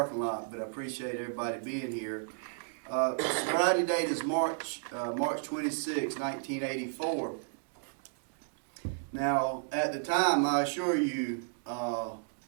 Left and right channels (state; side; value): silent; left; digital silence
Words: lot, but I appreciate everybody being here. Sobriety date is March 26, 1984. Now, at the time, I assure you,